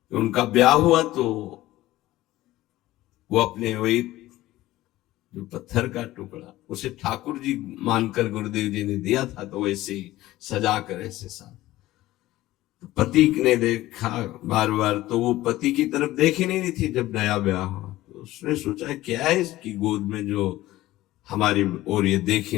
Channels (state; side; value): quieter; right; 16.4 dB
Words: उनका ब्याह हुआ तो वो अपने वही जो पत्थर का टुकड़ा उसे ठाकुर जी मानकर गुरुदेव जी ने दिया था, तो वैसे ही सजा कर ऐसे साथ पति ने देखा बार बार, तो वो पति की तरफ देख ही नहीं रही थी। जब नया ब्याह हुआ तो उसने सोचा क्या है इसकी गोद में जो हमारी ओर ये देख